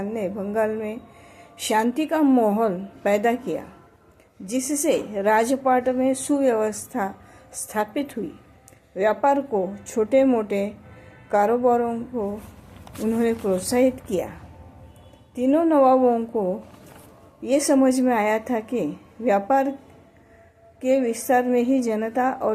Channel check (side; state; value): both; identical; correlation 1.00